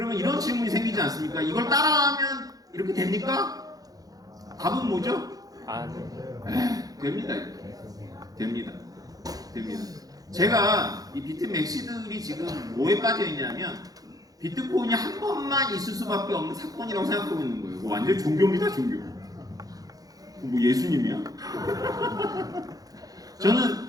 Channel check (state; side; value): late; left; 0.18 ms